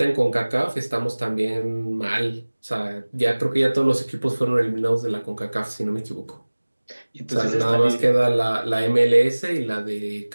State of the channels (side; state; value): both; inverted; correlation -1.00